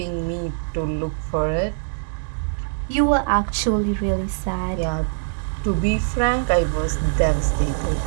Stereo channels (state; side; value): silent; left; digital silence